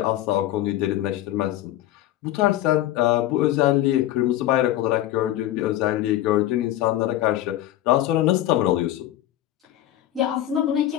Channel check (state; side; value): quieter; right; 13.7 dB